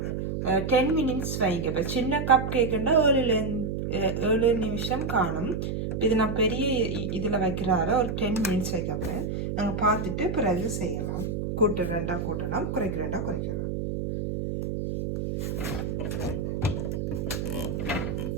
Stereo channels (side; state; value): right; noise; hum, 2 dB below the sound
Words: 10 மினிட்ஸ் வைங்க. இப்போ சின்ன கப் கேக்குன்னா 7 நிமிஷம் காணும். இது நான் பெரிய இதில் வைக்கிறார ஒரு 10 மினிட்ஸ் வைக்க போகிறேன். நாங்கள் பார்த்துட்டு பிறகு செய்யலாம். கூட்டுறேன்டா கூட்டலாம், குறைக்கிறேன்டா குறைக்கலாம்.